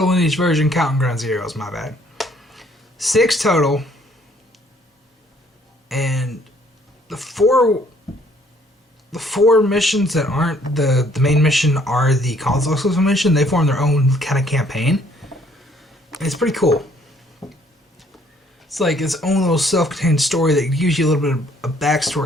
in each version, counting Ground Zeroes, my bad. 6 total. And the four missions that aren't the main mission are the console exclusive mission. They form their own kind of campaign. And it's pretty cool. It's like its own little self-contained story that gives you a little bit of a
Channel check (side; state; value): both; normal; correlation 0.62